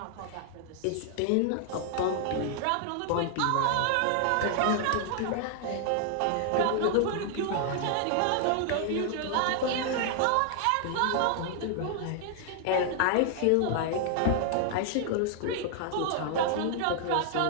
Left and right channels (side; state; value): both; different; correlation 0.00